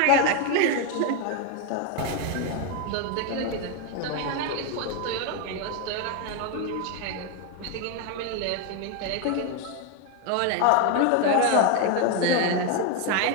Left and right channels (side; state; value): both; different; correlation 0.01